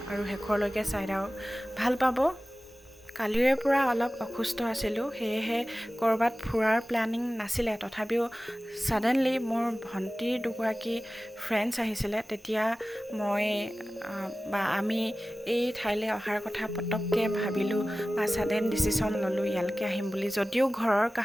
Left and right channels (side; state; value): both; normal; correlation 0.96